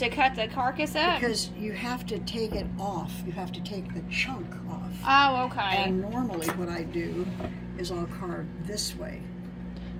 cut the carcass up. Because you have to take it off. You have to take the chunk off. Oh, okay. And normally, what I do is I'll carve this way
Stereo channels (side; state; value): both; identical; correlation 1.00